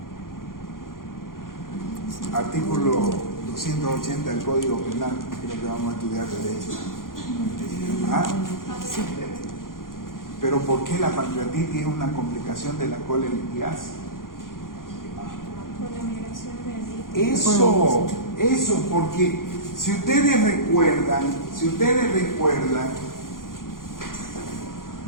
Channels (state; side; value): late; right; 0.90 ms